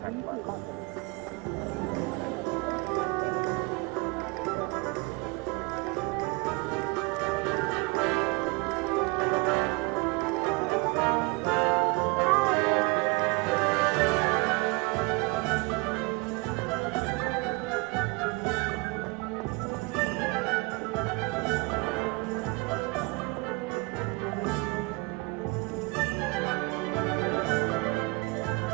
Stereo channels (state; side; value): quieter; left; 28.0 dB